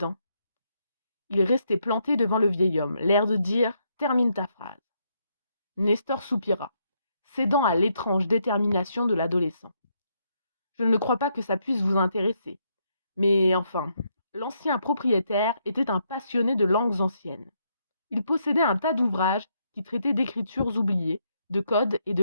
Il restait planté devant le vieil homme, l'air de dire termine ta phrase. Nestor soupira, cédant à l'étrange détermination de l'adolescent. Je ne crois pas que ça puisse vous intéresser. Mais enfin, l'ancien propriétaire était un passionné de langues anciennes. Il possédait un tas d'ouvrages qui traitaient d'écritures oubliées, de codes et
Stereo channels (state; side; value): inverted; both; correlation -0.76